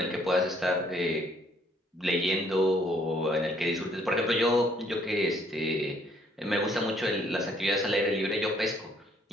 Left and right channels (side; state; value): both; normal; correlation 0.65